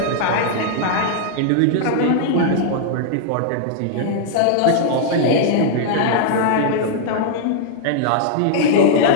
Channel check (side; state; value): both; different; correlation -0.01